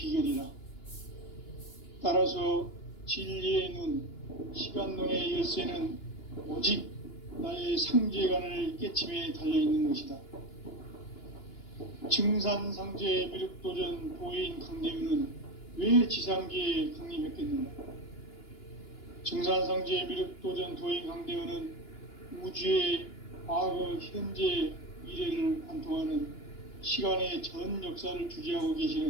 따라서 진리의 눈, 시간론의 열쇠는 오직 나의 상제관을 깨침에 달려있는 것이다. 증산상제 미륵도전 도인 강대윤은 왜 지상계에 강림했겠는가? 증산상제 미륵도전 도인 강대윤은 우주의 과거, 현재, 미래를 관통하는 시간의 전 역사를 주재하고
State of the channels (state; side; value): late; right; 2.9 ms